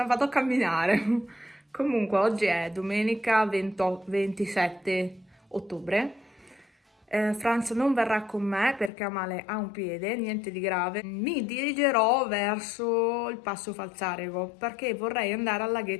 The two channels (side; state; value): right; drops out; at 8.9 s